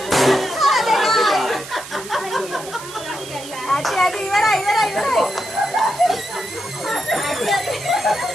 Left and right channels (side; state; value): right; noise; hiss, 14 dB below the sound